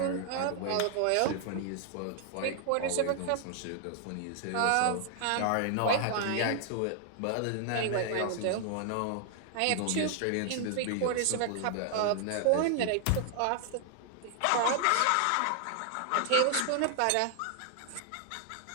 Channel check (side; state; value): both; different; correlation 0.00